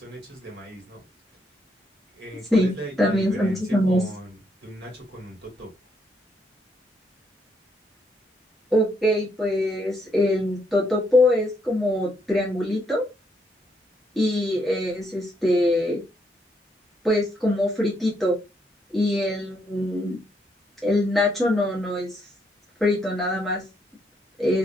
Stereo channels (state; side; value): normal; both; correlation 0.75